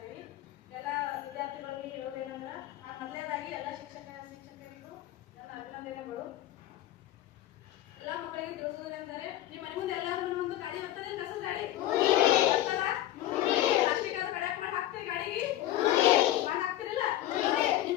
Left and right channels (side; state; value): right; quieter; 13.7 dB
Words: ಎಲ್ಲ ವಿದ್ಯಾರ್ಥಿಗಳಿಗೆ ಹೇಳೋದೇನಂದ್ರೆ ಮೊದಲನೇದಾಗಿ ಎಲ್ಲ ಶಿಕ್ಷಕರಿಗೂ ನನ್ನ ಅಭಿನಂದನೆಗಳು. ಎಲ್ಲ ಮಕ್ಕಳಿಗೆ ತಿಳಿಸೋದೇನೆಂದರೆ ನಿಮ್ಮ ಮನೆ ಮುಂದೆ ಎಲ್ಲರೂ ಒಂದು ಗಾಡಿ ಬರ್ತದೆ, ಕಸದ ಗಾಡಿ ಪ್ಲಾಸ್ಟಿಕ್ ಅದು ಕಡೆ ಮಾಡಿ ಹಾಕ್ತೀರಿ, ಗಾಡಿಗೆ ಮಾಡಿ ಹಾಕ್ತಿರಿಲ್ಲ?